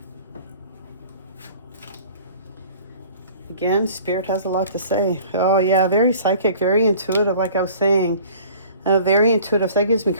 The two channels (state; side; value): inverted; both; correlation -0.49